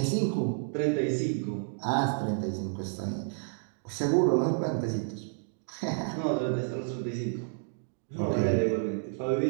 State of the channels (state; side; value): silent; left; digital silence